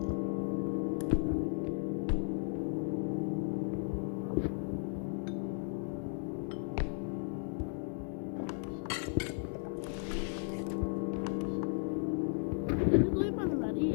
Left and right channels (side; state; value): right; silent; 54 dB below the other